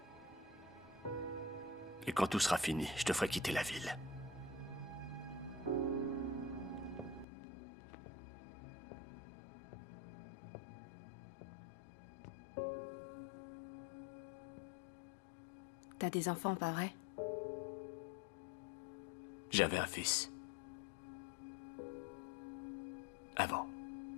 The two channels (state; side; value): drops out; right; at 7.2 s